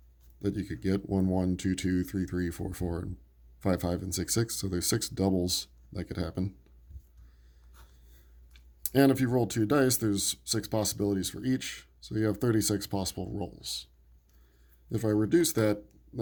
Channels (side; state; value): both; identical; correlation 1.00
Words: that you could get. 1, 1, 2, 2, 3, 3, 4, 4, and 5, 5, and 6, 6. So there's 6 doubles that could happen. And if you roll 2 dice, there's 6 possibilities for each. So you have 36 possible rolls. If I reduce that,